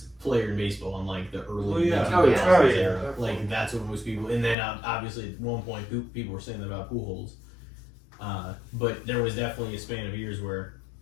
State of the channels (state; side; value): drops out; right; at 4.5 s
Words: player in baseball in like the early yeah. 2000s Oh, yeah. era. Definitely. Like that's what most people, and then obviously at one point people were saying that about Pujols. But there was definitely a span of years where